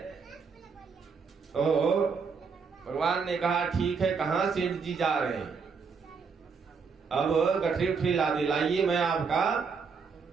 तो भगवान ने कहा ठीक है, कहाँ सेठ जी जा रहे हैं? अब गठरी उठरी ला दिलाइए, मैं आपका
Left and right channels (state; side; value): quieter; left; 5.4 dB